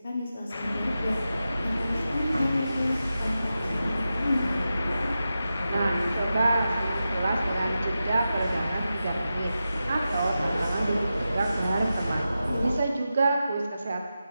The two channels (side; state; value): both; inverted; correlation -0.91